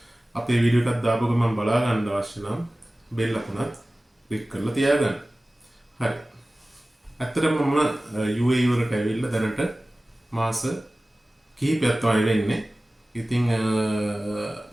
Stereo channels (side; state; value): both; normal; correlation 0.97